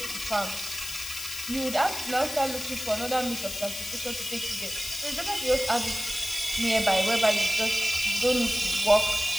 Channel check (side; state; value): left; noise; hiss, 7 dB below the sound